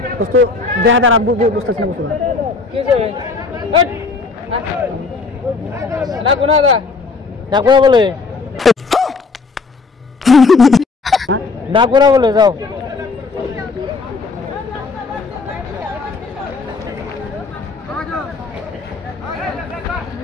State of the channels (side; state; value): right; quieter; 4.2 dB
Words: দোস্ত দেখা দাঁড়া বুঝতেছি না বুঝতে না বলে না করা বলে যাও।